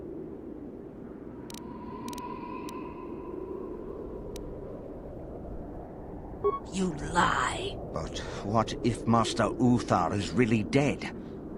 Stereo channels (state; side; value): identical; both; correlation 1.00